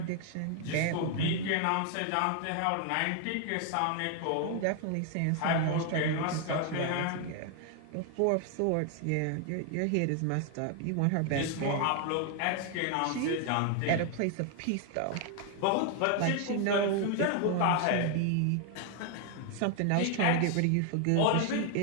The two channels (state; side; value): different; both; correlation 0.00